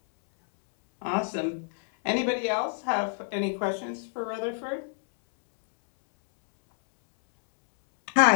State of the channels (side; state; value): right; silent; 60 dB below the other